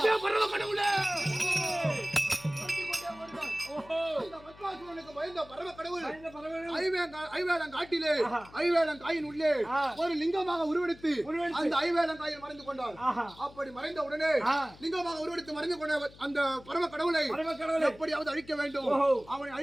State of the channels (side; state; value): left; noise; hum, 22 dB below the sound